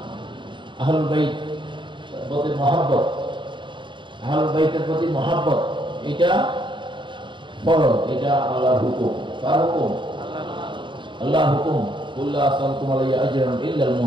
আহলুল বাইত প্রতি মহব্বত, আহলুল বাইতের প্রতি মহব্বত এটা ফরজ, এটা আল্লাহর হুকুম। কার হুকুম? আল্লাহর হুকুম। কুল্লা আসালকুম আলাইহি আজরান ইল্লা আল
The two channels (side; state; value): left; late; 0.23 ms